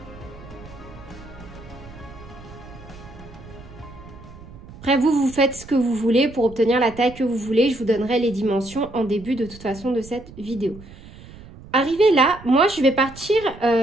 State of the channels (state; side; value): noise; right; rumble, 18 dB below the sound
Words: Après, vous faites ce que vous voulez pour obtenir la taille que vous voulez. Je vous donnerai les dimensions en début de toute façon de cette vidéo. Arrivé là, moi, je vais partir